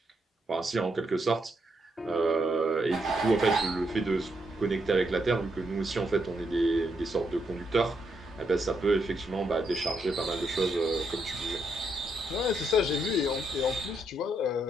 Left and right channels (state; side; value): normal; both; correlation 0.79